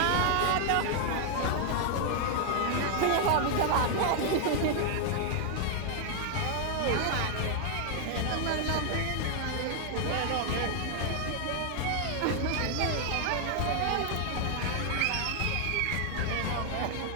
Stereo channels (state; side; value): different; both; correlation 0.00